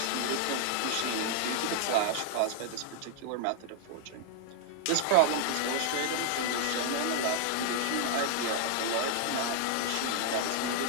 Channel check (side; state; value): both; different; correlation 0.00